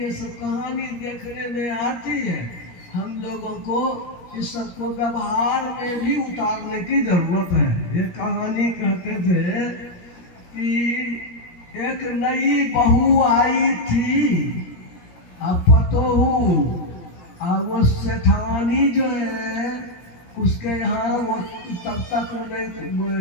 सब कहानी देखने में आती है, हम लोगों को इस सबको व्यवहार में भी उतारने की जरूरत है। ये कहानी कहते थे कि एक नई बहू आई थी, अब पतोहू, और वो सेठानी जो है उसके यहाँ वो तब तक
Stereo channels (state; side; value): late; right; 17 ms